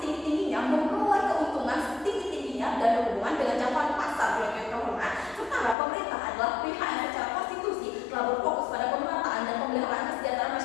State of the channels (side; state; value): right; drops out; at 5.8 s